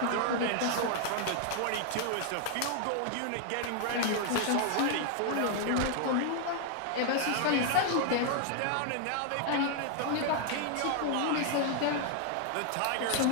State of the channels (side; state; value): both; different; correlation 0.00